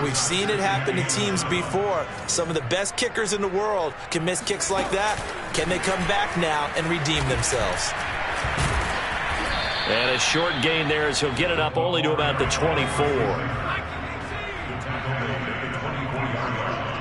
we've seen it happen to teams before. Some of the best kickers in the world can miss kicks like that. Can they come back now and redeem themselves? And a short gain there as he'll get it up only to about the 24.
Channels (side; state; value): both; identical; correlation 1.00